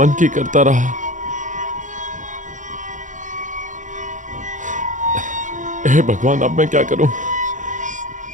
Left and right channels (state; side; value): late; left; 0.37 ms